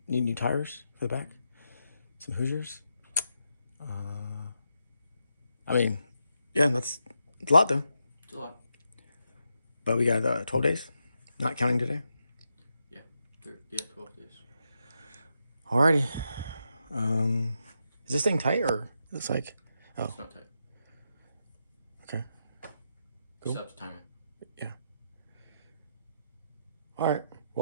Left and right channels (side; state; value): both; inverted; correlation -0.84